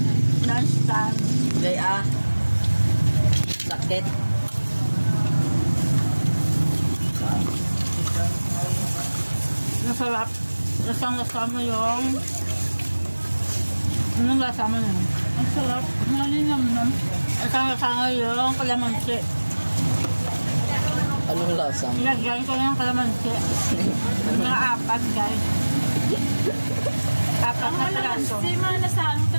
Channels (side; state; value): both; inverted; correlation -1.00